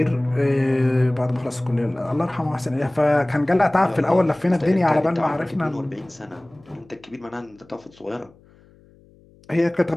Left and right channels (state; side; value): noise; left; hum, 28 dB below the sound